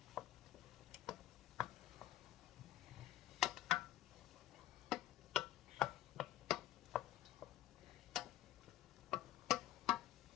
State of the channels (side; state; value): right; quieter; 13.6 dB